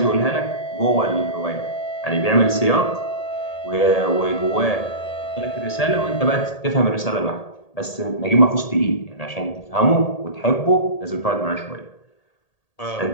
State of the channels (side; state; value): right; late; 1.8 ms